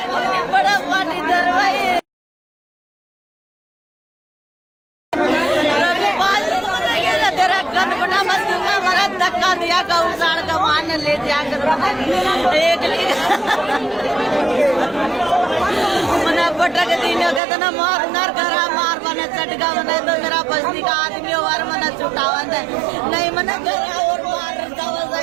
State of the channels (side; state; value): left; drops out; at 17.4 s